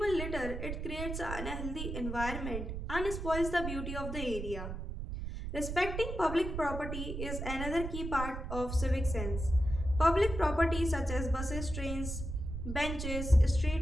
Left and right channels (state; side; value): noise; right; rumble, 5 dB below the sound